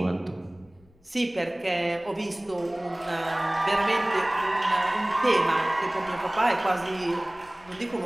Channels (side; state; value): left; noise; rumble, 29 dB below the sound